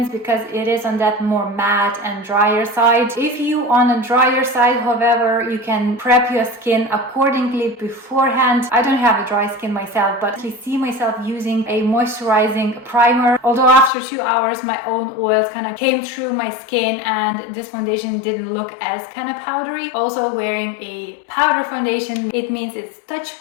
because it is on that more matte and drier side. If you on a drier side, however, you can prep your skin accordingly beforehand. I don't have a dry skin myself, but I see myself using a moisturizing primer. Although after 2 hours, my own oils kind of came through my skin and this foundation didn't look as kind of powdery. Also, wearing a powder foundation, it means it's touch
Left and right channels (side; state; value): right; drops out; at 13.9 s